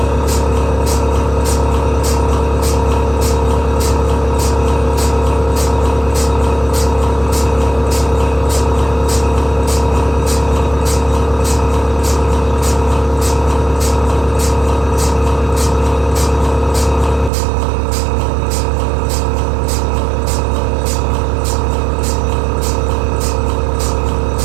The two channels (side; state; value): left; drops out; at 17.3 s